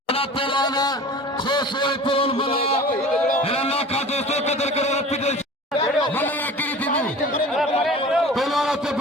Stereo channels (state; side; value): normal; both; correlation 0.40